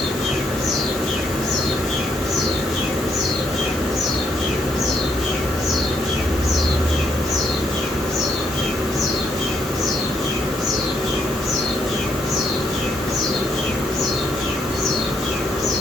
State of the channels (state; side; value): normal; both; correlation 0.74